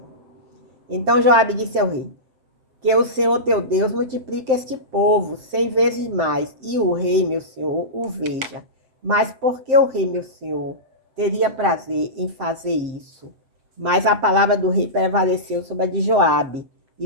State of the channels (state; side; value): late; left; 7.7 ms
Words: Então Joabe disse ao rei: que o Senhor teu Deus multiplique este povo 100 vezes mais, e o rei, meu senhor, o veja. Mas por que o rei, meu senhor, teria prazer em fazer isso? Mas a palavra do rei prevaleceu sobre a de Joabe